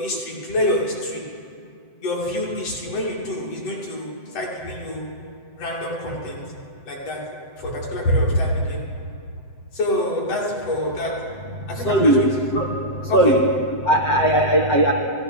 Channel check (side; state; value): right; late; 7.8 ms